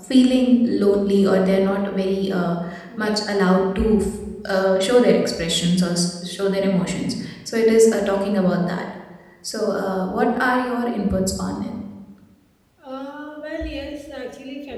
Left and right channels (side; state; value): both; identical; correlation 1.00